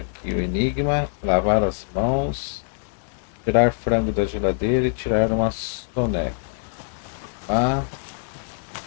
o enigma, lavar as mãos, tirar frango da geladeira e tirar uma soneca.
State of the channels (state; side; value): silent; right; digital silence